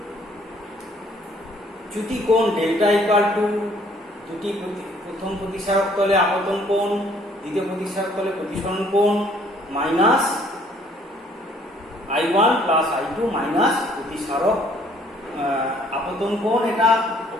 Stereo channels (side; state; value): both; normal; correlation 0.61